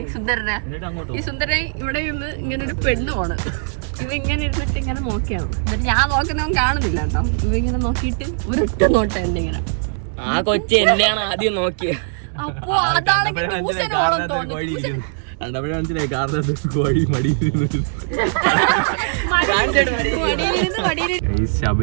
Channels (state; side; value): silent; left; 66 dB below the other